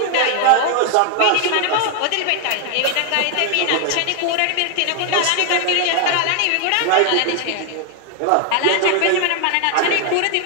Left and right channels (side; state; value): both; different; correlation 0.00